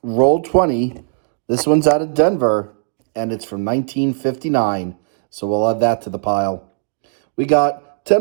roll 20. This one's out of Denver, and it's from 1959. So we'll add that to the pile. We got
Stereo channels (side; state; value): left; silent; digital silence